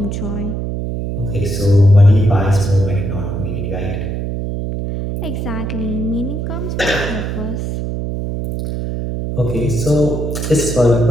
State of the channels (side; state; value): right; noise; hum, 3 dB below the sound